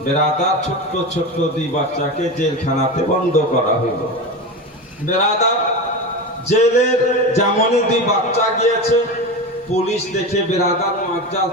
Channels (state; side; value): normal; both; correlation 0.23